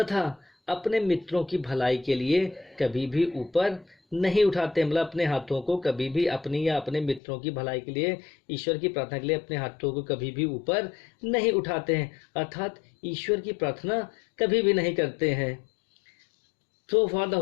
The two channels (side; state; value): right; drops out; at 7.2 s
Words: अपने मित्रों की भलाई के लिए कभी भी ऊपर नहीं उठाते। मतलब अपने हाथों को कभी भी अपनी या अपने मित्रों की भलाई के लिए, ईश्वर की प्रार्थना के लिए अपने हाथों को कभी भी ऊपर नहीं उठाते हैं, अर्थात ईश्वर की प्रार्थना कभी भी नहीं करते हैं। So for the